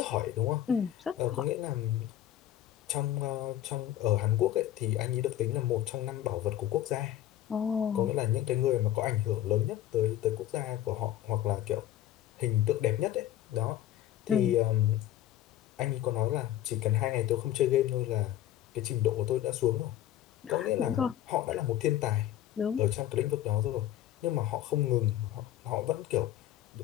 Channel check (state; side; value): quieter; right; 12.5 dB